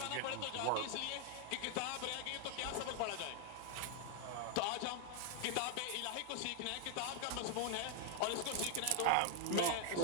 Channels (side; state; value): both; different; correlation 0.00